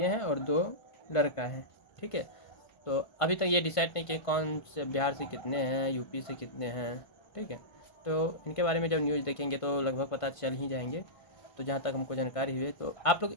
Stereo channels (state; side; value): late; right; 1.5 ms